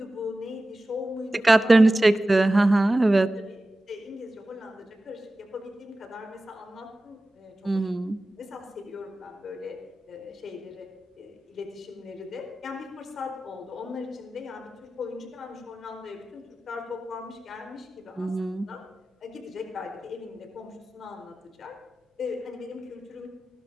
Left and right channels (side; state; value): both; normal; correlation 0.95